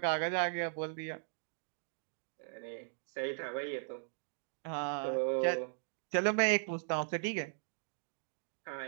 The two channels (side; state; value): left; silent; digital silence